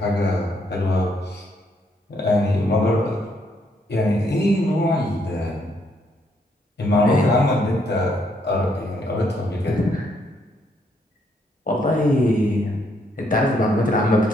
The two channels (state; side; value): normal; both; correlation 0.72